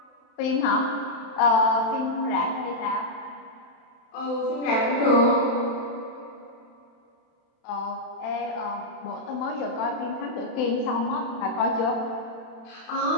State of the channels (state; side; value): late; right; 31 ms